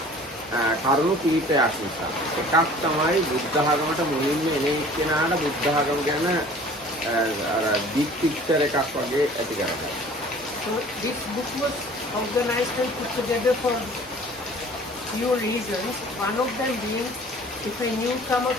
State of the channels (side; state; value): both; normal; correlation 0.48